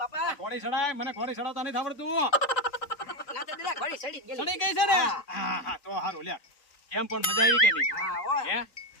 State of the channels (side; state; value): right; late; 3.9 ms